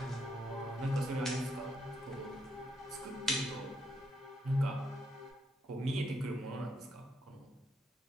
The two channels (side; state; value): both; normal; correlation 0.77